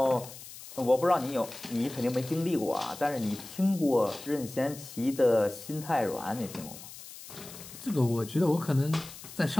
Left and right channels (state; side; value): noise; left; hiss, 15 dB below the sound